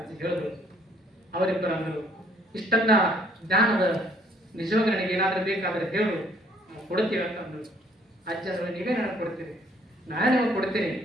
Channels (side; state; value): both; normal; correlation 0.62